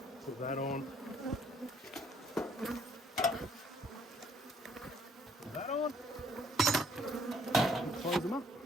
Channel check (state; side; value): normal; both; correlation 0.64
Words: Put that on. Put that on. And close them up.